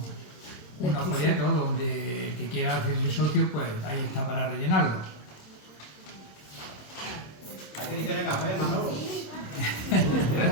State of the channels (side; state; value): right; late; 26 ms